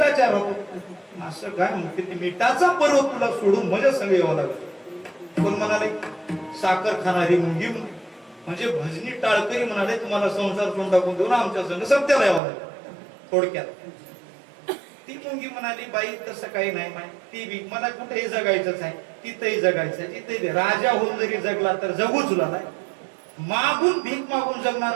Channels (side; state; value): left; drops out; at 12.4 s